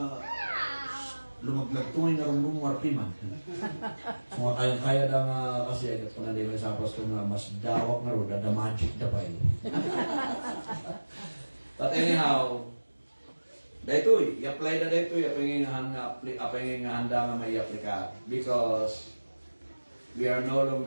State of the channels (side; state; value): both; inverted; correlation -1.00